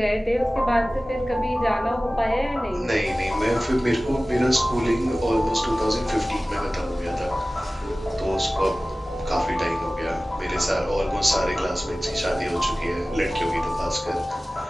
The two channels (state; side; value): normal; both; correlation 0.97